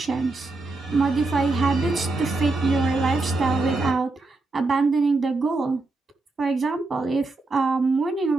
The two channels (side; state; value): left; quieter; 3.4 dB